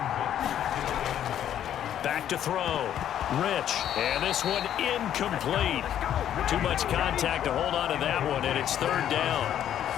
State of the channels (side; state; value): right; quieter; 10.5 dB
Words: Back to throw. Rich. And this one incomplete. Too much contact to hold on to that one, and it's 3rd down.